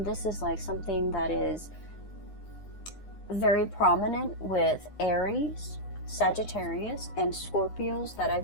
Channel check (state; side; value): late; right; 9.7 ms